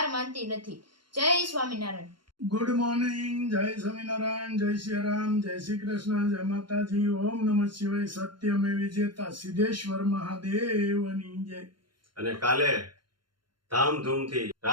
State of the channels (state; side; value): late; left; 0.72 ms